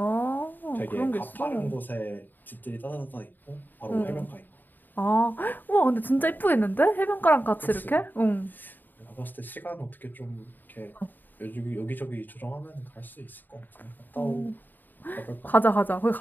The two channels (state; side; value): late; right; 0.090 ms